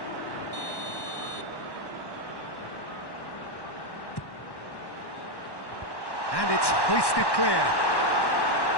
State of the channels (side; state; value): right; late; 1.1 ms